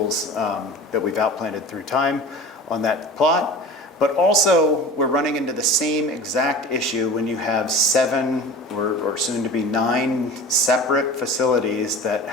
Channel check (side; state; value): both; normal; correlation 0.37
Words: that we've outplanted through time on that plot. But also, we're running into the same exact issue when you have 7 or soon to be 9 separate facilities that